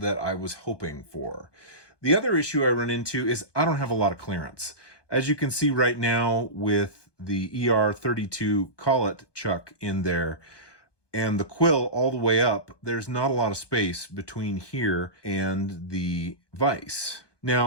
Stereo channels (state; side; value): late; right; 1.2 ms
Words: I was hoping for. The other issue I run into is I don't have a lot of clearance. As you can see right now with the ER32 collet chuck in there and the quill all the way up, there's not a lot of space between here and the vise.